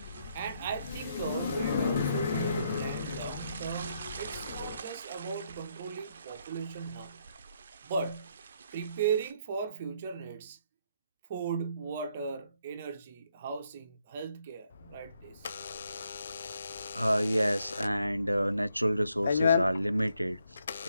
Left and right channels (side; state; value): both; inverted; correlation -0.75